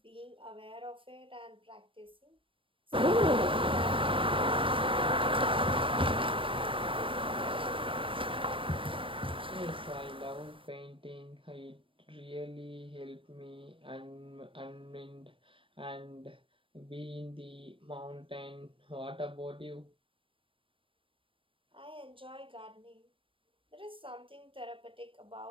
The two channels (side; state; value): left; late; 0.25 ms